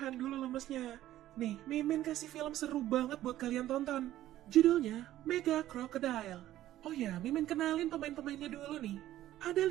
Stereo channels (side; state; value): left; quieter; 13.7 dB